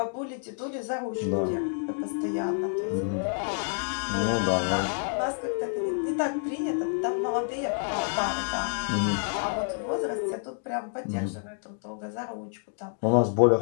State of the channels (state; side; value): silent; right; 59 dB below the other